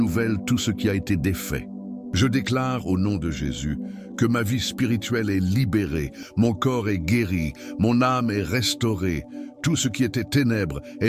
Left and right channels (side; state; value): both; identical; correlation 1.00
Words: tout ce qui a été défait. Je déclare au nom de Jésus que ma vie spirituelle est libérée, mon corps est guéri, mon âme est restaurée. Tout ce qui était ténèbres